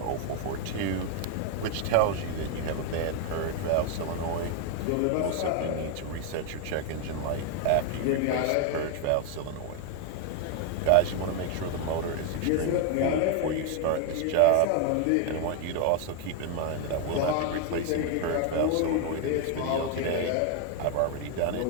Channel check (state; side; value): different; both; correlation 0.01